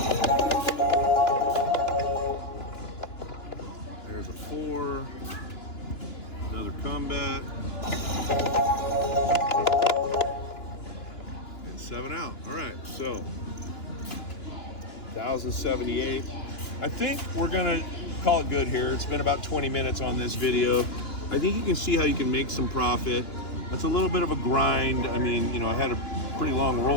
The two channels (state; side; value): late; right; 2.9 ms